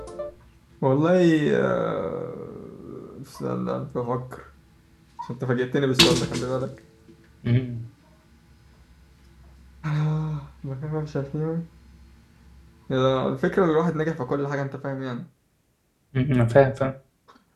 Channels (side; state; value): both; identical; correlation 1.00